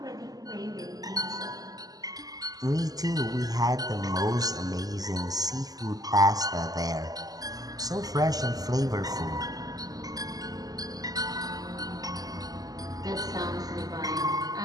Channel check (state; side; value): late; left; 0.18 ms